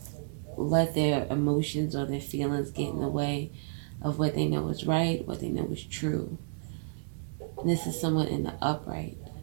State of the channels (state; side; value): silent; left; 57 dB below the other